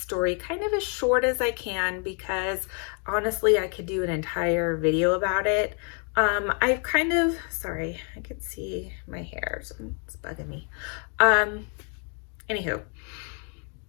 story kind of as short as I can because honestly, I could do an entire video about it. I've kind of, sorry, I could see my hair, so it's bugging me. Anywho,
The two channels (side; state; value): right; quieter; 39.8 dB